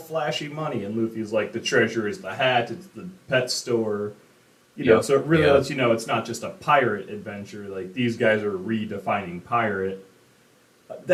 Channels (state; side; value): identical; both; correlation 1.00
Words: money, and Luffy's like the treasure is the hat. It's the pet store. Yep. So it really Yeah. lets you know it's not just a pirate adventure. Like these guys are redefining pirate.